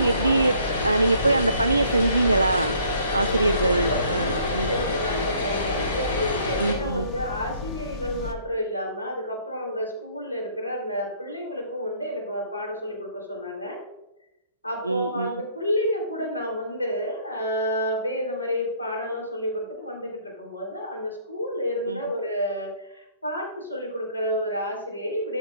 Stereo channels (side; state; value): both; inverted; correlation -0.60